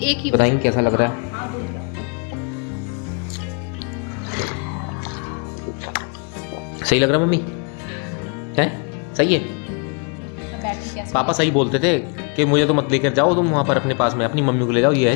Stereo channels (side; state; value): right; quieter; 36.5 dB